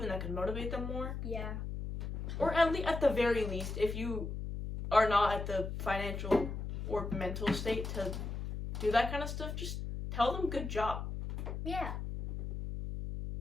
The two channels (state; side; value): noise; left; hum, 5 dB below the sound